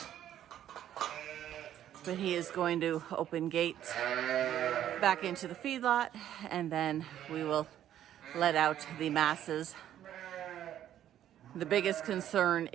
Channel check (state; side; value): quieter; left; 11.3 dB